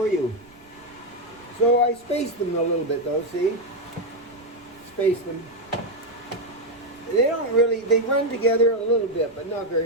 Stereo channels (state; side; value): noise; right; rumble, 30 dB below the sound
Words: you. So I space them a little bit though, see? Space them. They run together a little bit, but not